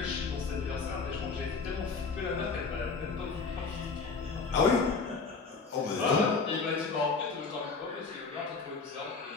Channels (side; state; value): right; quieter; 4.6 dB